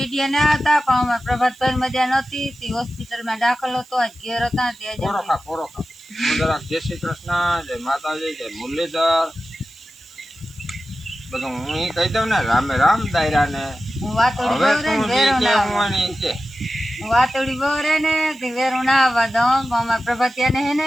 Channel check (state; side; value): noise; right; hiss, 26 dB below the sound